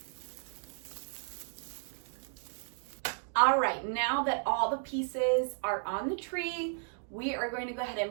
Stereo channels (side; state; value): left; silent; digital silence